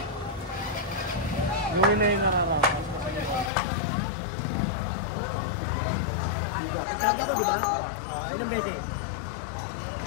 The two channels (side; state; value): right; drops out; at 3.5 s